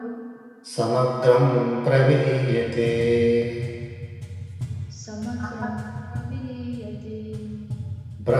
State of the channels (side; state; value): both; identical; correlation 1.00